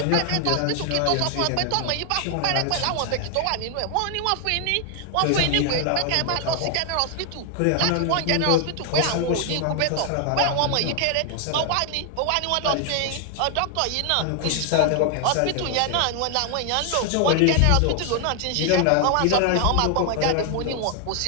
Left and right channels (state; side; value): different; both; correlation 0.00